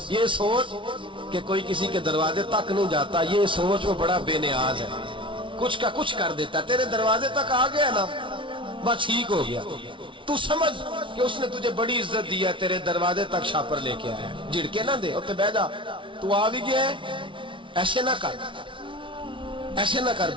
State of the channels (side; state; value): left; late; 0.25 ms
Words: سوچ کہ کوئی کسی کے دروازے تک نہیں جاتا، یہ سوچ وہ بڑا بے نیاز ہے، کچھ کا کچھ کر دیتا، تیرے دروازے تک آ گیا نا بس ٹھیک ہو گیا۔ تو سمجھ کہ اس نے تجھے بڑی عزت دی ہے، تیرے دروازے تک شاپر لے کے آیا ہے، جھڑکے نہ دے، اتنے بیٹھ جا، تو آ بھی گیا ہے، ایسے نہ کر، ایسے نہ کر،